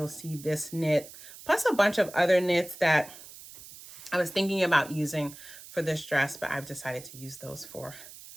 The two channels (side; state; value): right; noise; hiss, 17 dB below the sound